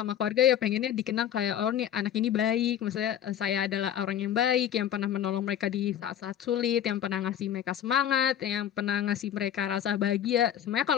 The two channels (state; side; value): quieter; right; 10.2 dB